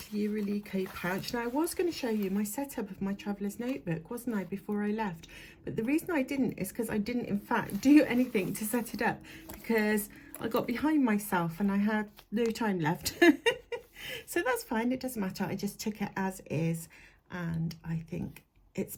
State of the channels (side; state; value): both; identical; correlation 1.00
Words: pouch. Now I was going to show you my setup of my traveller's notebook, wasn't I, before I left? But the reason I didn't is because I didn't in fact do anything to set it up because I got behind myself and I had no time left. So that's fine, it doesn't matter. I just took it as is and I think it's